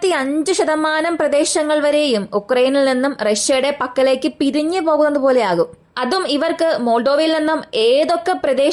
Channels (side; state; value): both; identical; correlation 1.00